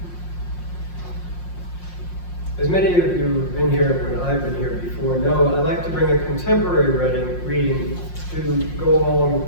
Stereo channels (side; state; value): right; late; 5.6 ms